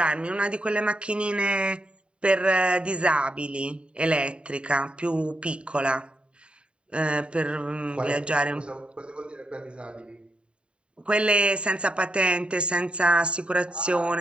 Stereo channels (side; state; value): left; late; 0.055 ms